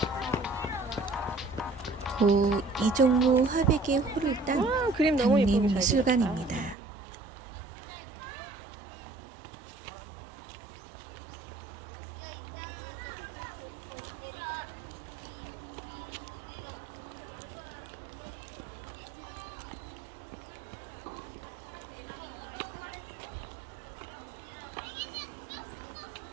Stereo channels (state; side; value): drops out; left; at 6.8 s